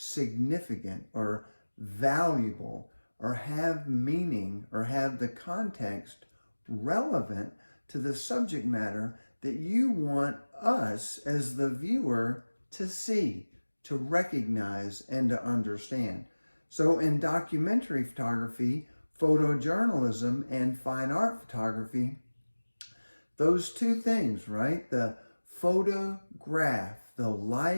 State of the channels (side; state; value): both; inverted; correlation -1.00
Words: or valuable or have meaning or have the context relevant to the subject matter that you want us as the viewer to see, to recognize, and to understand. So in documentary photography, photojournalism, and fine art photography, those two things, right? The photograph, the